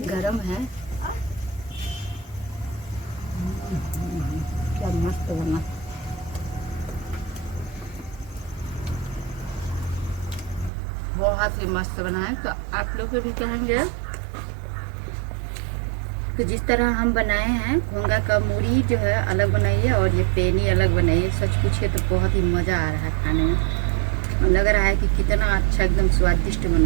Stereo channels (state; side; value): drops out; left; at 10.7 s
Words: गरम है। मस्त बना। बहुत ही मस्त बना है। तो आप लोग को भी कहेंगे तो जिस तरह हम बनाए हैं घोंगा का मूढ़ी जो है अलग बनाइए और ये पेनी अलग बनाइए। सच पूछिए तो बहुत ही मज़ा आ रहा है खाने में, और लग रहा है कि कितना अच्छा एकदम स्वादिष्ट